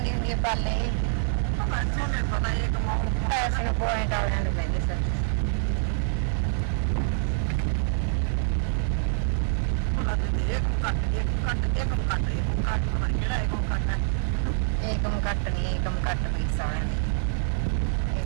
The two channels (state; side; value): silent; left; 61 dB below the other